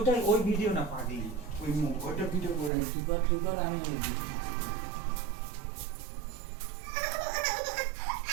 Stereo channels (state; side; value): drops out; left; at 2.7 s